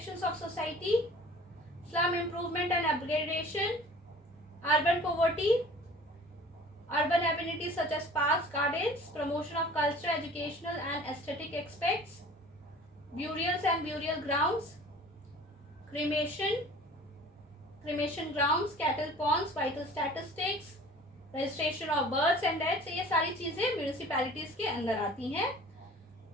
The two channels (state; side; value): normal; both; correlation 0.46